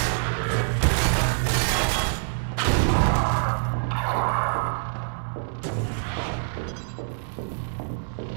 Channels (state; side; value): silent; left; 61 dB below the other